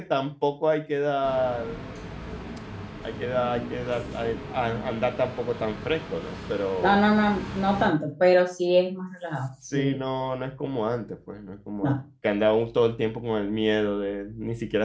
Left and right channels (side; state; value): both; identical; correlation 1.00